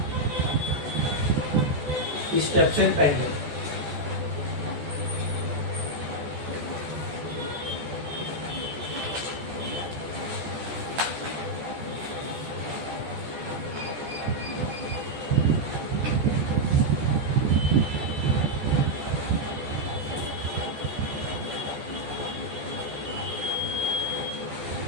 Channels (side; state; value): left; late; 14 ms